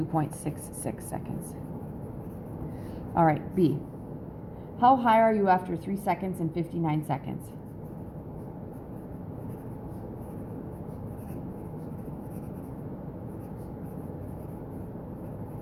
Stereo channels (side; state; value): both; identical; correlation 1.00